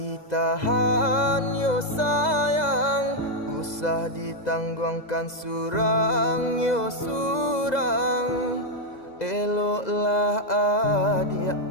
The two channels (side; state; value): right; late; 2.0 ms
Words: yo sayang, usah ditangguhkan surang yo surang. Eloklah adia